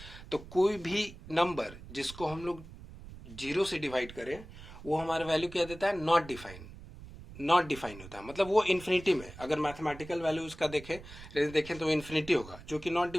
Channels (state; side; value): noise; right; rumble, 16 dB below the sound